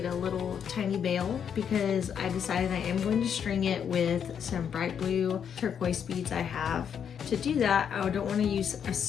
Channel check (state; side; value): quieter; right; 7.9 dB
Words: a little tiny bail because I decided I am going to string it with some bright blue turquoise beads I have. To do that, I don't want to use a